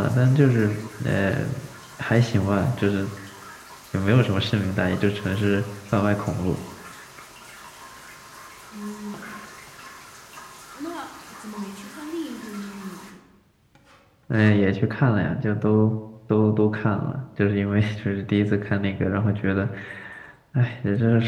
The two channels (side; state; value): both; identical; correlation 1.00